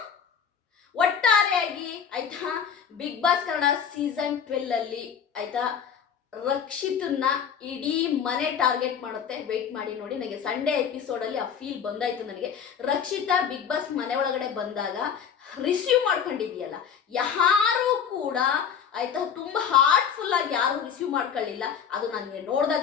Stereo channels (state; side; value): quieter; right; 7.5 dB